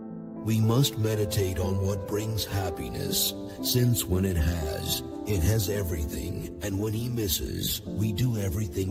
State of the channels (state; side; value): identical; both; correlation 1.00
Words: We must meditate on what brings happiness, since when it has everything, and when he misses, we do